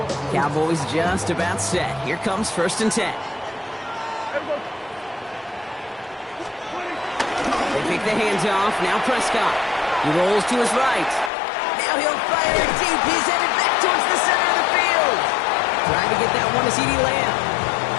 Cowboys just about set. Here comes 1st and 10. They pick the hands off. Now Prescott. He rolls to his right. Now he'll fire deep. He's headed back towards the center of the field. Trying to get that one to CeeDee Lamb.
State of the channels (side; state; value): right; drops out; at 11.3 s